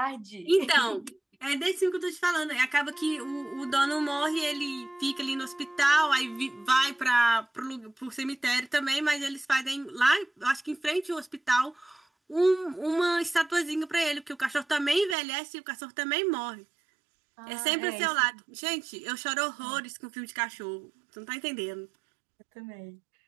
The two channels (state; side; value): drops out; left; at 15.2 s